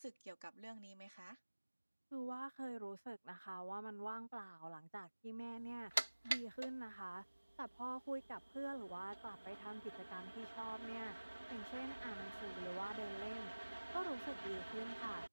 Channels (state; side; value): inverted; both; correlation -1.00